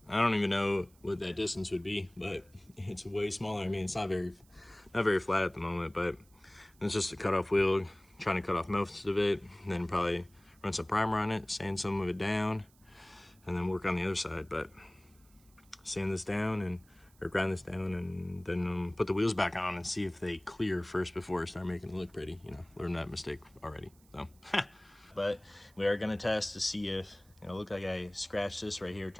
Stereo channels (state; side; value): noise; right; hiss, 30 dB below the sound